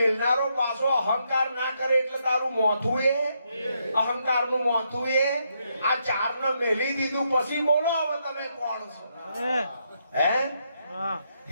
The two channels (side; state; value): both; inverted; correlation -0.78